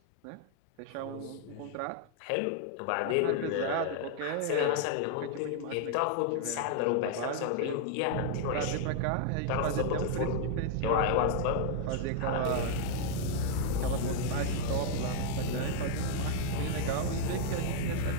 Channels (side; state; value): both; different; correlation -0.01